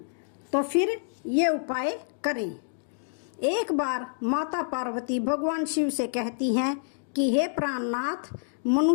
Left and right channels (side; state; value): right; silent; digital silence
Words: तो फिर ये उपाय करें। एक बार माता पार्वती भगवान शिव से कहती हैं कि हे प्राणनाथ,